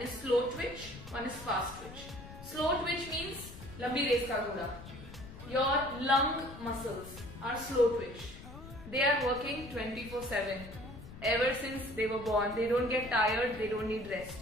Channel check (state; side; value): noise; left; rumble, 14 dB below the sound